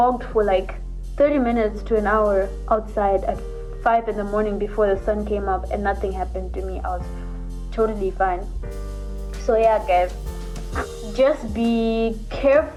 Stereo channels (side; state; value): both; identical; correlation 1.00